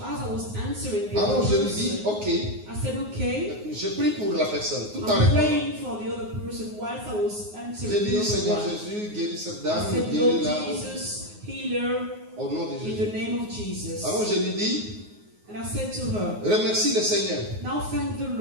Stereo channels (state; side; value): late; left; 9.5 ms